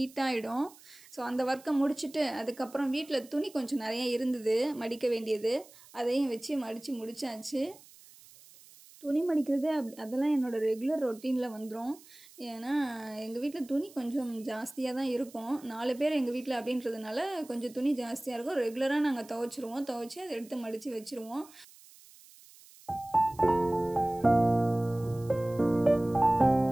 ஸோ அந்த ஒர்க்கை முடிச்சுட்டு அதுக்கப்புறம் வீட்டில் துணி கொஞ்சம் நிறைய இருந்தது மடிக்க வேண்டியது, அதையும் வச்சு மடித்து முடித்தாச்சு. துணி மடிக்கிறது அதெல்லாம் என்னோடய ரெகுலர் ரொட்டீனில் வந்துடும். ஏன்னா எங்கள் வீட்டில் துணி கொஞ்சம் ஜாஸ்தியாக தான் இருக்கும். 4 பேர் எங்கள் வீட்டில் அப்படின்றதுனால கொஞ்சம் துணி ஜாஸ்தியாக இருக்கும். ரெகுலராக நாங்கள் துவைச்சிருவோம். துவைச்சி அதை எடுத்து மடித்து வச்சுருவோம்.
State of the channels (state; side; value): noise; right; hiss, 23 dB below the sound